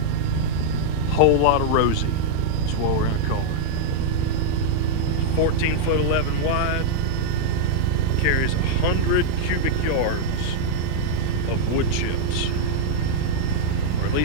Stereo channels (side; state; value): both; different; correlation -0.01